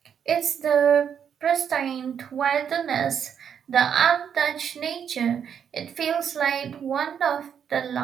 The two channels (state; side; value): quieter; left; 8.0 dB